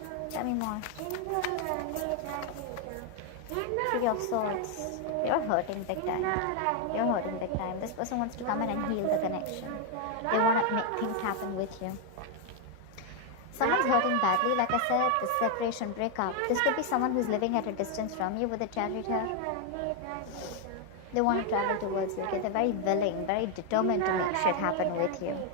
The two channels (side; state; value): both; different; correlation 0.01